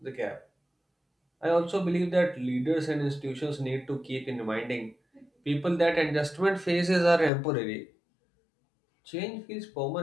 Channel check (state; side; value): drops out; right; at 7.3 s